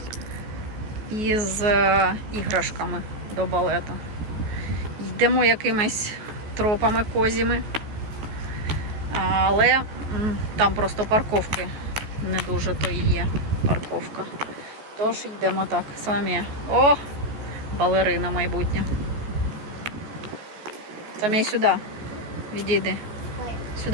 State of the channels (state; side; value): late; left; 14 ms